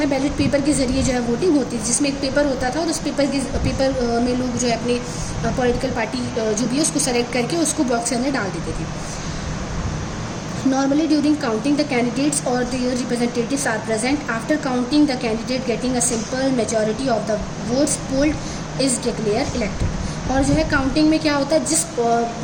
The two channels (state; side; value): identical; both; correlation 1.00